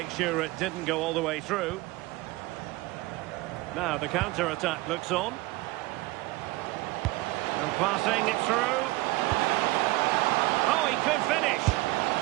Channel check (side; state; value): left; quieter; 20.4 dB